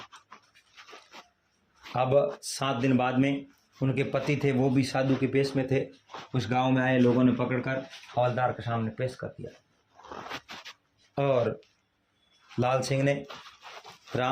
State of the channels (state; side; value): identical; both; correlation 1.00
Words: अब 7 दिन बाद में उनके पति थे, वो भी साधु के पेश में थे, उस गांव में आए। लोगों ने पकड़कर हवलदार के सामने पेश कर दिया और लाल सिंह ने